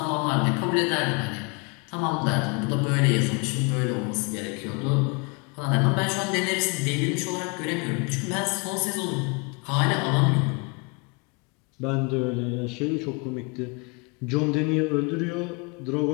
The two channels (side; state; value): right; quieter; 31.4 dB